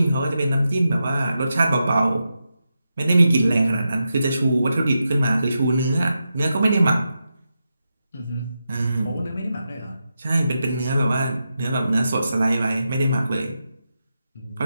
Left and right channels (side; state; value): both; inverted; correlation -0.88